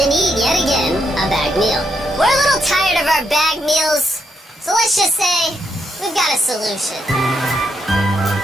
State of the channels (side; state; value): both; normal; correlation 0.79